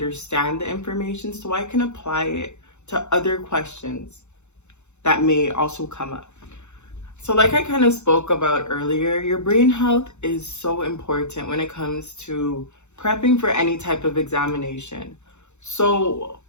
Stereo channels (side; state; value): right; late; 0.83 ms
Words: the information so I can apply it to other questions that may also come up. So like I kind of spoke about earlier, your brain health is so important when it comes to prepping for any type of examination. So